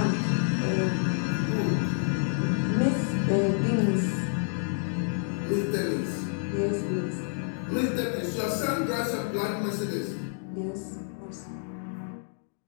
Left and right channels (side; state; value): right; silent; digital silence